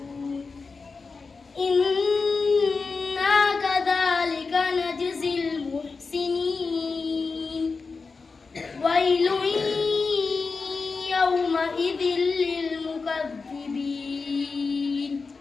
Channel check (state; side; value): quieter; right; 4.4 dB